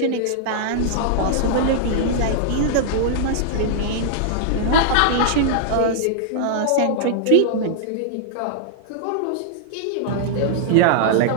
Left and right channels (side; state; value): both; different; correlation -0.01